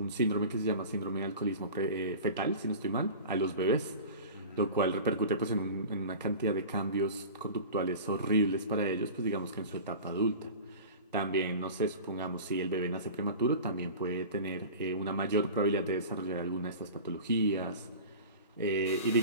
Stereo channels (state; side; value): inverted; both; correlation -0.35